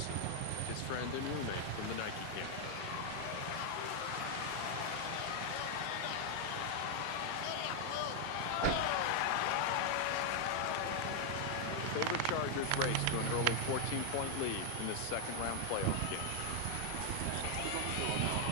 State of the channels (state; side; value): different; both; correlation 0.00